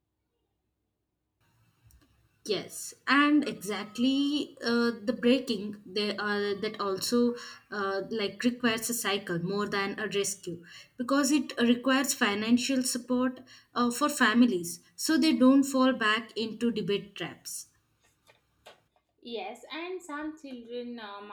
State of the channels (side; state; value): both; identical; correlation 1.00